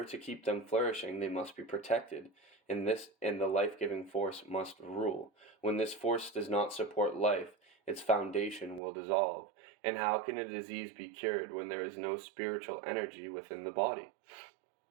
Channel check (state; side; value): drops out; left; at 8.8 s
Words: to keep them flourishing, they must be protected, and the life-giving force must rule. When this force does not support life, its foundation will dissolve. And how can a disease be cured when there is no spiritual energy within the body?